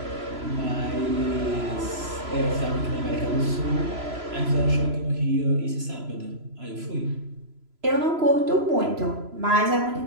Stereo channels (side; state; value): left; late; 3.0 ms